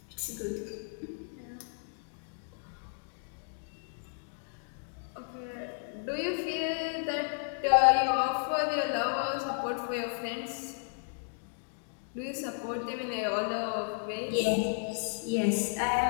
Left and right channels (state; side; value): silent; right; digital silence